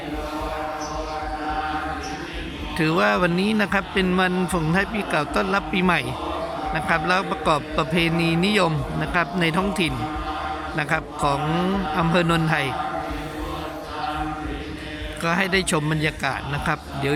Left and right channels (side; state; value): both; identical; correlation 1.00